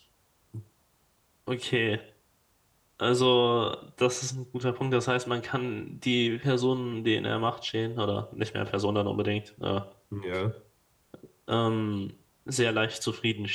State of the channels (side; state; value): both; identical; correlation 1.00